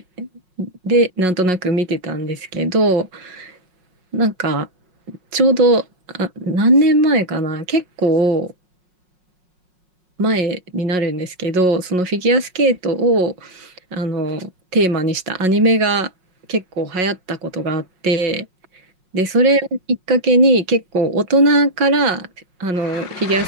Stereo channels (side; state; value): left; late; 5.5 ms